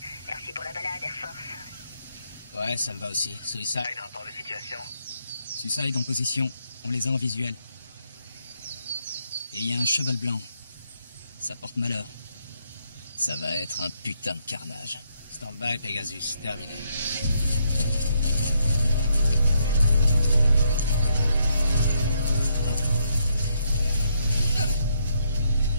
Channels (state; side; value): inverted; both; correlation -0.75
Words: Merci pour la balade, Air Force. Ouais, ça me va aussi. Suicide. Rapport de situation. Suicide en position. On les a en visuel. Et il y a un cheval blanc. Ça porte malheur. Ça va être un putain de carnage. Stand-by, Pegasus. Terminé.